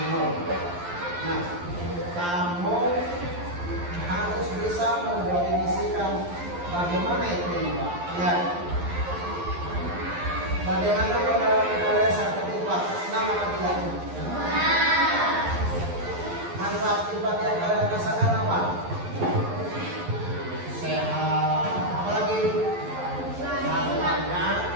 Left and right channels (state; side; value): late; left; 11 ms